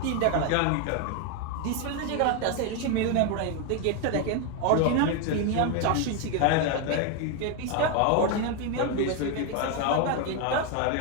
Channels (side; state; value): both; different; correlation 0.01